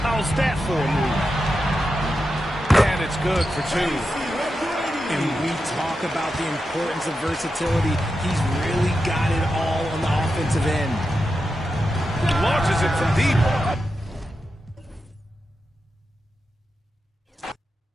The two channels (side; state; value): both; normal; correlation 0.89